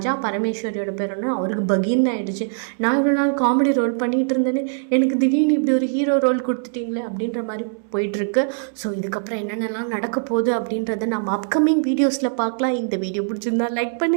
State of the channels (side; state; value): left; silent; 64 dB below the other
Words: பரமேஸ்வரியோட பேரன்னு அவருக்கு பகீர்னு ஆகிடுச்சு, நான் இவ்வளோ நாள் காமெடி ரோல் பண்ணிகிட்டு இருந்தேன்னு எனக்கு திடீர்னு இப்படி ஒரு ஹீரோ ரோல் கொடுத்துட்டீங்களே அப்படின்ற மாதிரி போயிட்டுருக்கு. ஸோ இதுக்கப்புறம் என்னென்னலாம் நடக்க போகுது அப்படின்றத நம்ம அப்கமிங் வீடியோஸில் பார்க்கலாம். இந்த வீடியோ பிடிச்சிருந்தா லைக்